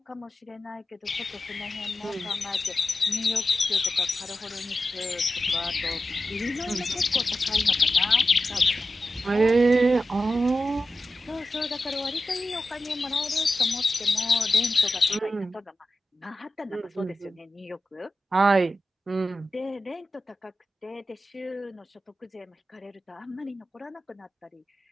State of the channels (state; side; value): normal; both; correlation 0.92